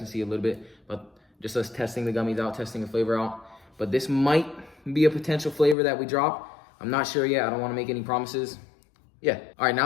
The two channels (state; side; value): drops out; right; at 5.8 s